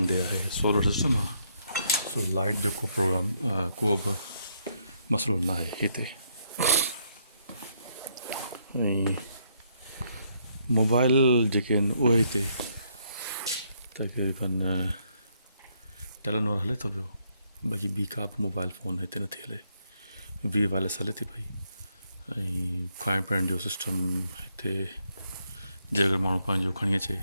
ॾे आहे सोलर सिस्टम आहे। सो लाइट जो को प्रोग्राम को बि मसइलो न आहे हिते। ऐं मोबाइल जेके आहिनि उहे हिते तक़रीबन टेलीनॉर हले थो पियो। बाक़ी ॿी का बि मोबाइल फ़ोन हिते नथी हले। वी वायरलेस हले थी पई। ऐं खाइण पीअण जो सिस्टम हिते जे अगरि माण्हू पंहिंजो खणी अचे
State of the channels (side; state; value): both; inverted; correlation -0.74